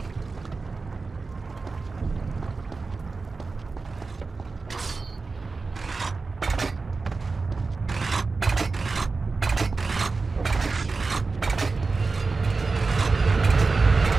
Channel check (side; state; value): left; quieter; 4.1 dB